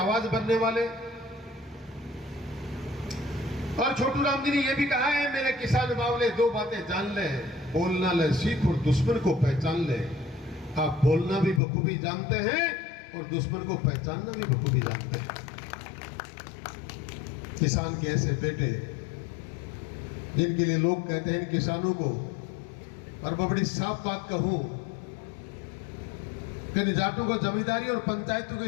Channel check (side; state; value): right; drops out; at 11.6 s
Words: बनने वाले। और छोटू राम जी ने यह भी कहा है, मेरे किसान बावले दो बातें जान ले, बोलना ले सीख और दुश्मन को पहचान ले। आप बोलना भी बखूबी जानते हैं और दुश्मन को पहचानना भी बखूबी जानते हैं। किसान के ऐसे बेटे जिनके लिए लोग कहते हैं किसानों को, और मैं बड़ी साफ बात कहूं कि निजाटों को जमींदारी और पंचायतों